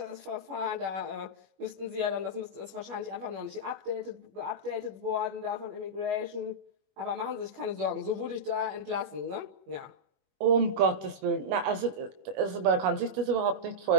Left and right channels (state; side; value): late; left; 21 ms